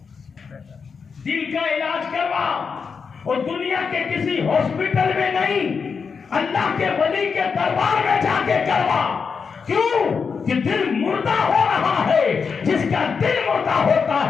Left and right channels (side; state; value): right; quieter; 5.7 dB